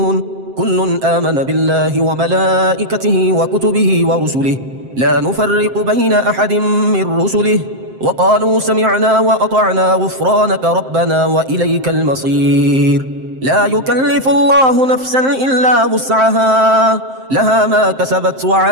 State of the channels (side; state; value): left; late; 7.6 ms